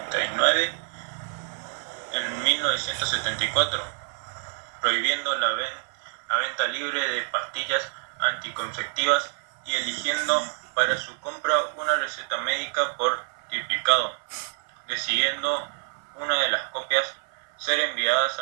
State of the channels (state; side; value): silent; left; 55 dB below the other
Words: en 1974, prohibiendo la venta libre de pastillas anticonceptivas y eligiendo para su compra una receta médica por triplicado, decidiendo una de las copias ser enviadas